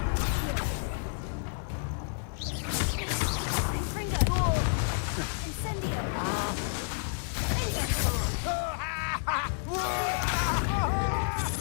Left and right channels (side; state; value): right; silent; digital silence